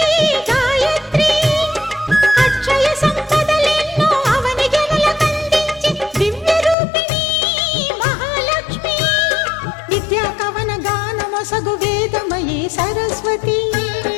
గాయత్రి అక్షయ సంపదలెన్నో అవని జనులకందించి దివ్య రూపిణి మహాలక్ష్మి విద్యా కవన గానమొసగు వేదమయీ సరస్వతి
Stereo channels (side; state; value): right; drops out; at 6.8 s